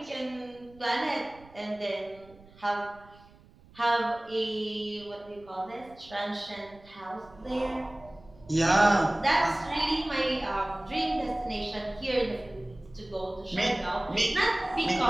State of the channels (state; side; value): noise; right; rumble, 25 dB below the sound